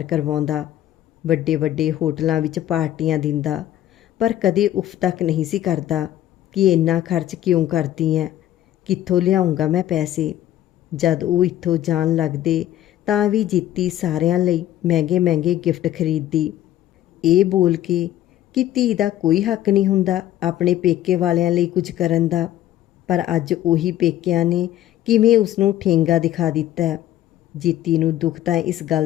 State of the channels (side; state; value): right; quieter; 12.8 dB